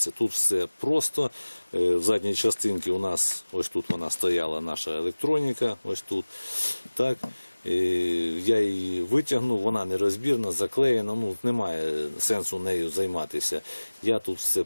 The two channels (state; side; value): inverted; both; correlation -1.00